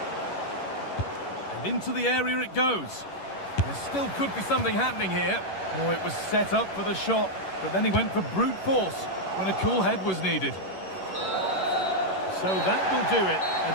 And into the area it goes. There still could be something happening here. Oh, it was set up for the shot, but then he went for brute force when a cool head was needed. So that will do it.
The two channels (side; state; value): right; late; 11 ms